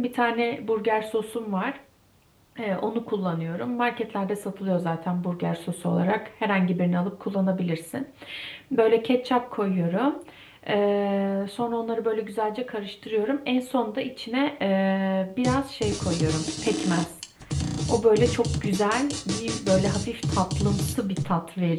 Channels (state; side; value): identical; both; correlation 1.00